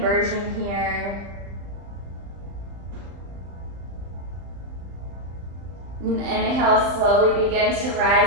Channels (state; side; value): late; left; 35 ms